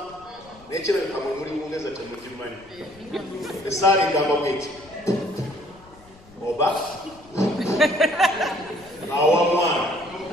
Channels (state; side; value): noise; left; rumble, 25 dB below the sound